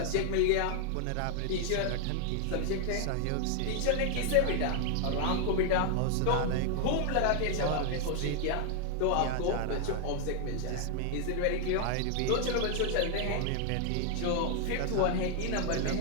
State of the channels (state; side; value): different; both; correlation 0.00